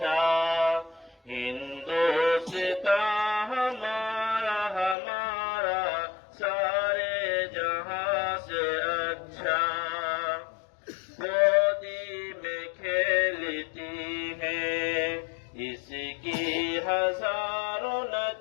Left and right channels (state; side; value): drops out; right; at 5.0 s